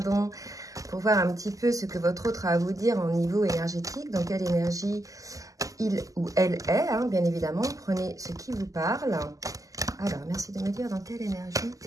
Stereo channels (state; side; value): late; left; 0.17 ms